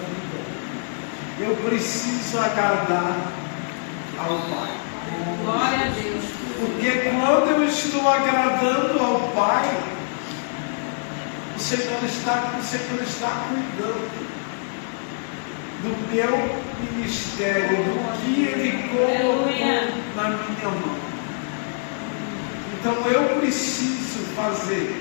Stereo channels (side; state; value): right; silent; digital silence